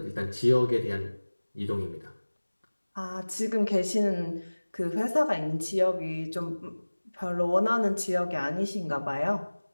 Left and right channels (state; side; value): inverted; both; correlation -1.00